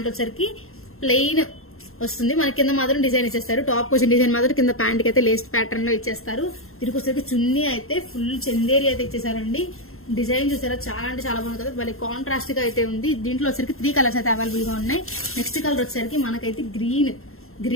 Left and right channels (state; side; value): late; right; 0.62 ms